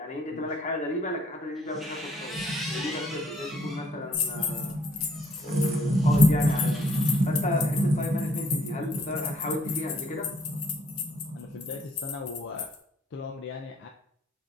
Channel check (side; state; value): both; normal; correlation 0.65